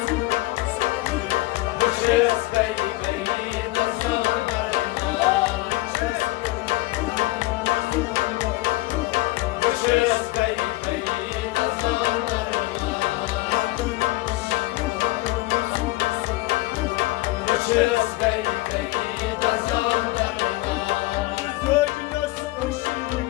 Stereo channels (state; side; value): quieter; right; 19.9 dB